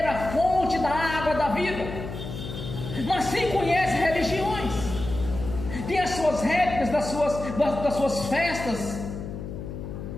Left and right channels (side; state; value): left; noise; hum, 8 dB below the sound